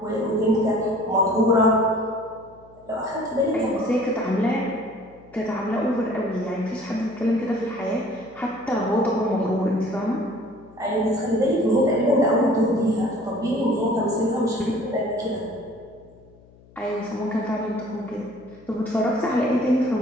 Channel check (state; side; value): noise; left; hum, 26 dB below the sound